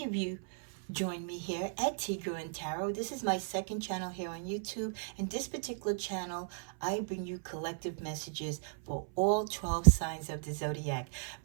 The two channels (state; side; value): silent; left; 54 dB below the other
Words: of you join me here at Tigro and Tarot. This is my second channel here on YouTube, and this particular channel I bring you collective messages for all 12 signs of the zodiac.